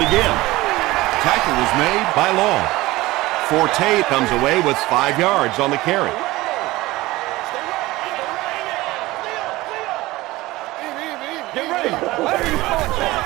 again. Tackle was made by Long. Forte comes away with 5 yards on the carry.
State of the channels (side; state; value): left; quieter; 19.0 dB